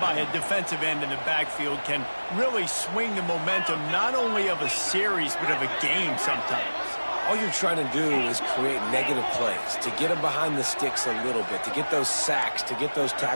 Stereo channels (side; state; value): both; inverted; correlation -1.00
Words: a defensive end in the backfield can really swing the momentum not only of a series but of a game sometimes. All you're trying to do is create negative plays, to get them behind the sticks a little bit, to get those sacks, to get those